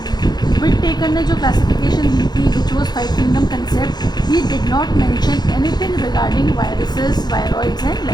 Whittaker ने जो classification दी थी, which was 5 kingdom concept, he did not mention anything regarding viruses, viroids and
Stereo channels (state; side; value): late; right; 0.20 ms